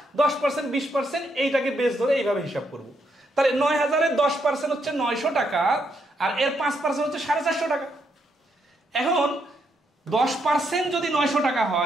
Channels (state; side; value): normal; both; correlation 0.77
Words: 10%, 20% এইটাকে বেস ধরে এইভাবে হিসাব করব। তাহলে 9000-এর 10% হচ্ছে 900 টাকা, আর এর 5% হচ্ছে 450 টাকা। এখন 10% যদি 900 টাকা